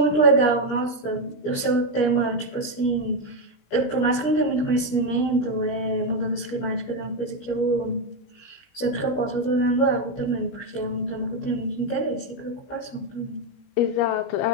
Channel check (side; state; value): right; late; 17 ms